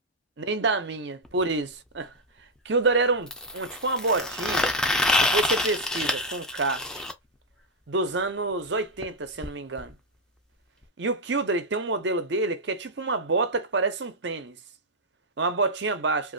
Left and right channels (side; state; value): both; normal; correlation -0.01